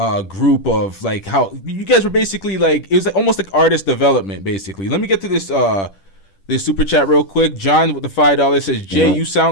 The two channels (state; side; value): late; right; 10 ms